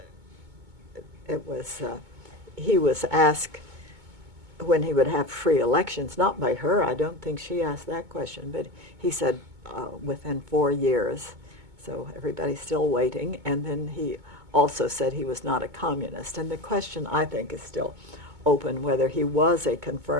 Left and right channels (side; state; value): left; late; 2.2 ms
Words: it was, he was asked when he would have free elections, not by her, I don't think she asked that question, but he said within 4 years. So everybody's still waiting. And then he also said he was not a communist. And the question, I think, is still open whether he was a